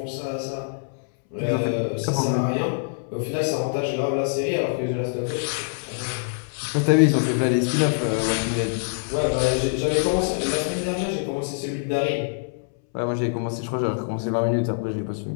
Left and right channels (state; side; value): silent; right; 62 dB below the other